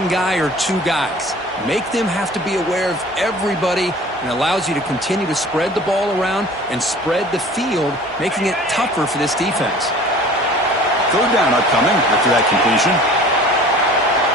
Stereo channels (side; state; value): both; normal; correlation 0.45